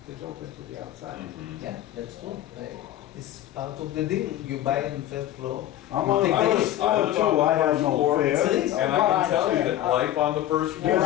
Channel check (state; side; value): quieter; right; 13.1 dB